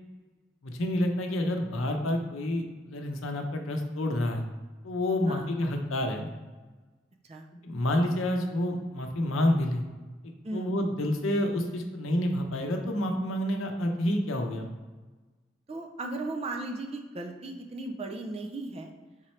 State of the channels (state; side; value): normal; both; correlation 0.73